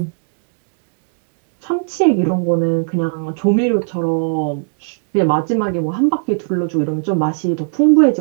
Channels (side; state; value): left; silent; 67 dB below the other